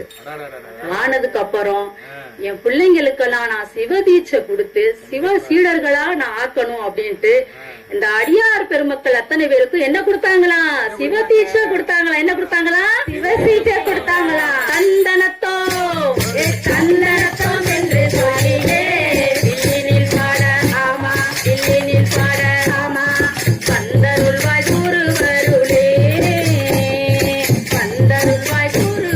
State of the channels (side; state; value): both; identical; correlation 1.00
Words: ஆனதுக்கு அப்புறம் என் பிள்ளைங்களுக்கெல்லாம் நான் சிவதீட்சை கொடுத்து சிவ சீடர்களா நான் ஆக்கணும் அப்படின்ட்டு இந்த அடியார் பெருமக்கள் அத்தனை பேருக்கும் என்ன கொடுத்தாங்களா? சிவதீட்சை கொடுத்தாங்களா? என்ன கொடுத்தாங்களா? சிவதீட்சை கொடுத்தாங்களா? தந்தனத்தோ தந்தனத்தோ என்று சொல்லிலே இல்லினில் பாட ஆமா, இல்லினில் பாட ஆமா, பந்தருள்வாய் குருவருளே, பந்தருள்வாய்